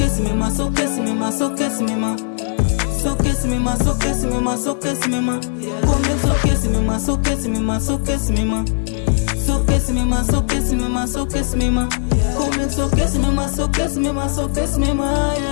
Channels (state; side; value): silent; right; digital silence